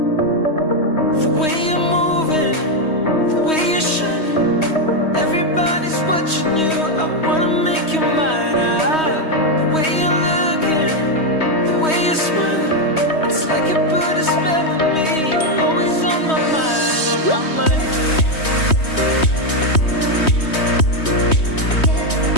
The way you're moving, the way you're shining, everybody's watching you. I wanna make you mine. The way you're looking, the way you're smiling, it's like you put a spell on me. You're always on my mind, on my mind.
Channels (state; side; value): late; right; 3.2 ms